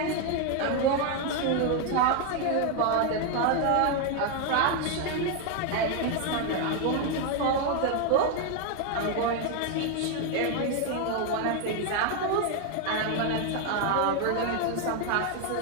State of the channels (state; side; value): different; both; correlation 0.01